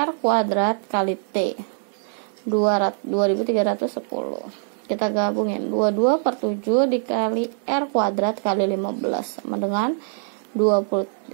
kuadrat kali T 2310. Kita gabungin 22/7 dikali R kuadrat kali 15 sama dengan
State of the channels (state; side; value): silent; left; 63 dB below the other